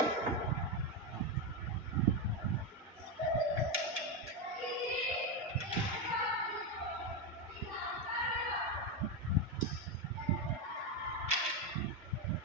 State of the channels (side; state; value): both; normal; correlation 0.09